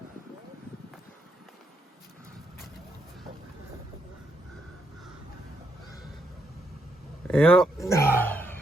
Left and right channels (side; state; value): both; normal; correlation 0.77